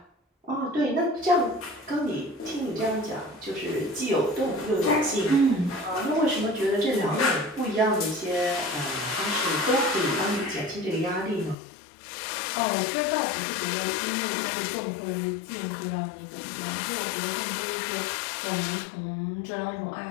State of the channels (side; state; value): right; drops out; at 11.6 s